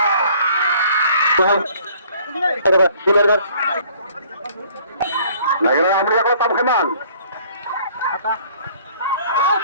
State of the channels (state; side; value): inverted; both; correlation -0.57